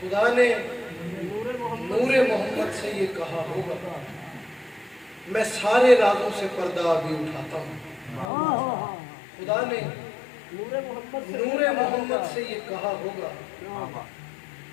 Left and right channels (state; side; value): drops out; right; at 8.3 s